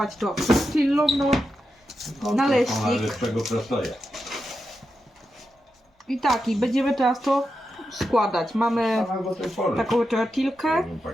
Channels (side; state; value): both; normal; correlation 0.88